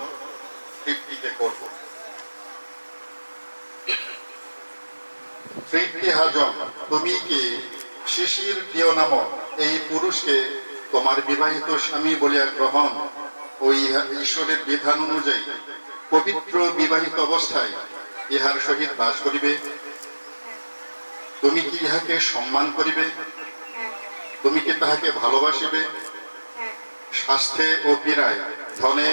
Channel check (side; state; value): both; inverted; correlation -1.00